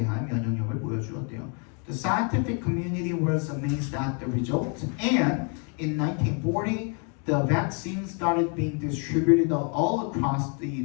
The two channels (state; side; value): quieter; right; 39.1 dB